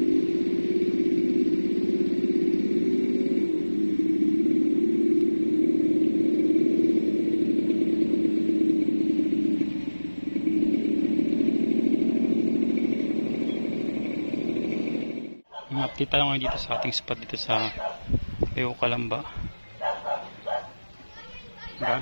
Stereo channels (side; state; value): both; inverted; correlation -1.00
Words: Update tayo ngayon dito sa ating spot dito sa Calamba.